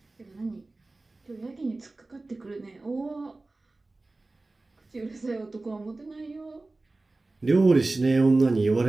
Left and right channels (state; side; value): quieter; left; 3.2 dB